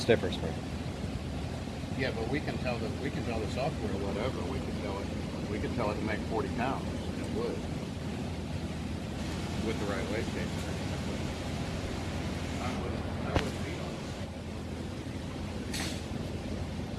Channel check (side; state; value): both; identical; correlation 1.00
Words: spring. Yeah, but we can tell the software whatever. We can tell it to make 40 pounds. It would with the right wastegate. I would be on